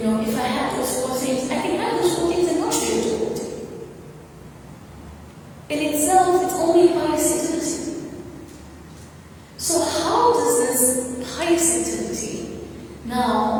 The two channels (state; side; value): identical; both; correlation 1.00